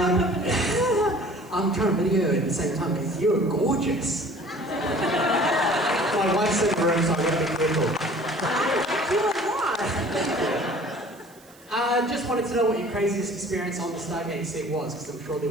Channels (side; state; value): right; noise; hiss, 26 dB below the sound